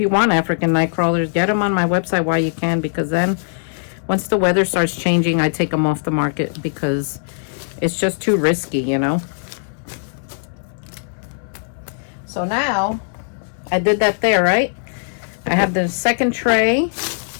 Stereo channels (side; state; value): right; silent; digital silence